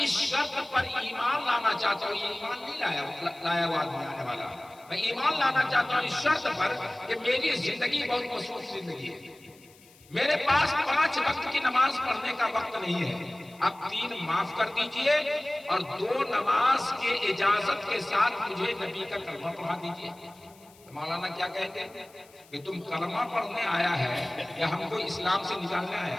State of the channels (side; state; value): left; noise; hiss, 26 dB below the sound